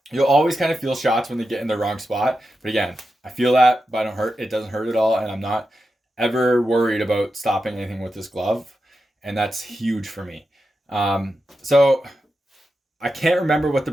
You'll always kind of feel shots when they get in the wrong spot. But again, I feel that, but I don't hurt. It doesn't hurt at all, and I'm not ever worried about stopping anything with this glove, and that's huge for me. So I can't remember what the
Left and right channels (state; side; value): normal; both; correlation 0.89